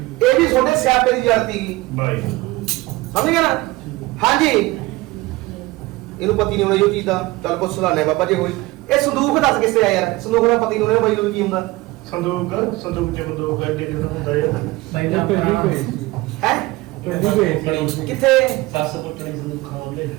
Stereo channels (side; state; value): left; quieter; 20.5 dB